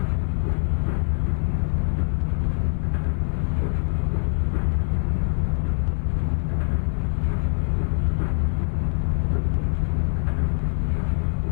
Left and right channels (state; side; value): silent; right; 63 dB below the other